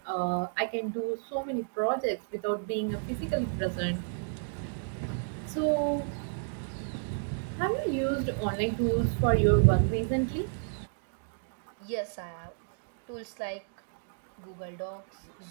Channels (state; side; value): silent; left; digital silence